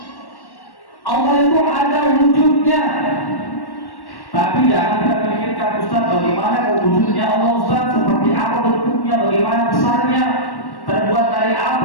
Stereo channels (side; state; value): right; late; 1.1 ms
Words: Allah itu ada wujudnya. Tapi jangan kita pikirkan Ustaz bagaimana wujudnya Allah Ustaz, seperti apa bentuknya, bagaimana besarnya, terbuat dari